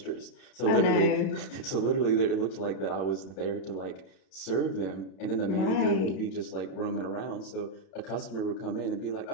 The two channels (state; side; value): late; right; 32 ms